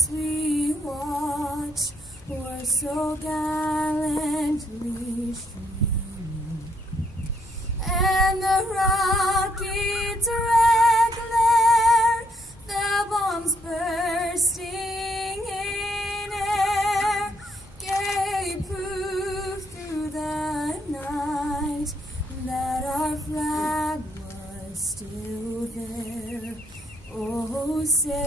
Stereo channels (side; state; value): both; normal; correlation 0.72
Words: we watch were so gallantly streaming, and the rocket's red glare, the bombs bursting in air, gave proof through the night that our flag was still there. Oh,